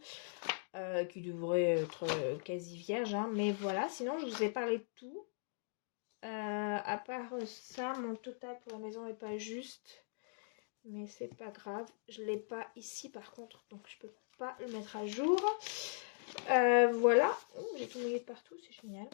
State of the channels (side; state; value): right; silent; digital silence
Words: Qui devrait être quasi vierge. Hein. Mais voilà, sinon je vous ai parlé de tout. À part ça, mon total pour la maison n'est pas juste. Mais c'est pas grave. Je l'ai pas ici par contre. Donc je peux pas le mettre à jour. Voilà. J'ai tout mouillé de partout. C'est génial.